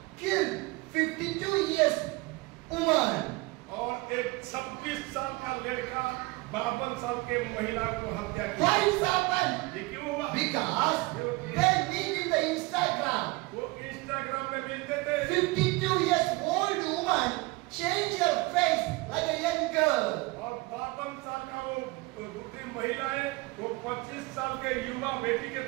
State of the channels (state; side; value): quieter; left; 23.2 dB